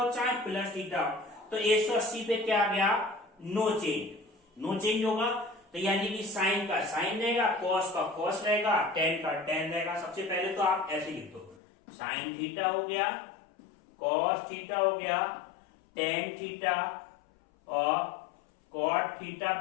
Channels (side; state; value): right; drops out; at 11.6 s